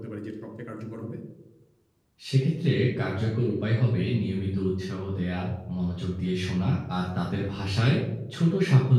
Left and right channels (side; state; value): both; identical; correlation 1.00